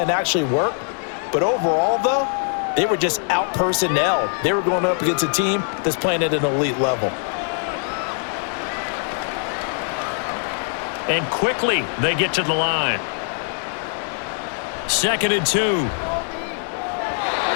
actually worked. But overall, though, they were just out-personnelled. They were going up against a team that's playing at an elite level. And quickly, they get to the line. 2nd and 2.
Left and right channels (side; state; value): right; silent; 55 dB below the other